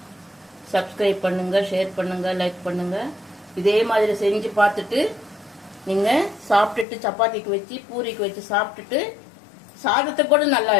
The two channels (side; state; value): right; drops out; at 6.9 s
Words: சப்ஸ்கிரைப் பண்ணுங்கள், ஷேர் பண்ணுங்கள், லைக் பண்ணுங்கள். இதே மாதிரி செஞ்சு பார்த்துட்டு நீங்கள் சாப்பிட்டுட்டு சப்பாத்திக்கு வச்சு பூரிக்கு வச்சு சாப்பிட்டுட்டு சாதத்துக்கு கூட நல்லா